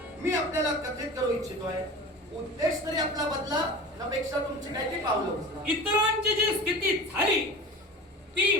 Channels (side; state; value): both; normal; correlation 0.35